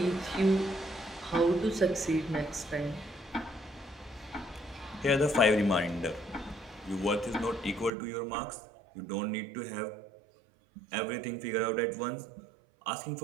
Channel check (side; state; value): left; drops out; at 7.9 s